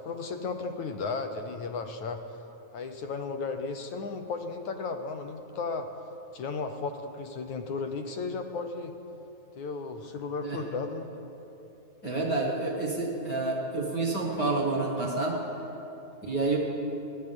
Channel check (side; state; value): right; late; 9.4 ms